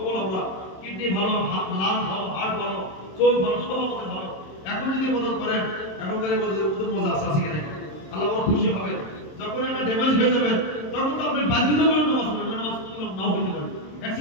আমরা কিডনি ভালো, লাং ভালো, হার্ট ভালো, চোখ ভালো, সব আমাদের ভালো। এখন যদি মদত করেন, এখনকার মজা আছে আছে কিনা, আল্লাহ বড় খুশি হবে। যখন একটা ড্যামেজ হয়ে যাবে তখন তো আপনি বাধ্যতামূলক নামাজ পড়বেন, নামাজ নাও হইতে পারে,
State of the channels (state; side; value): late; right; 27 ms